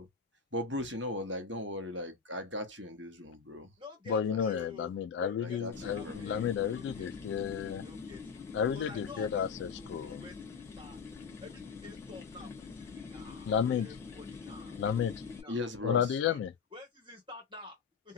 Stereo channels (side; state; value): right; quieter; 6.2 dB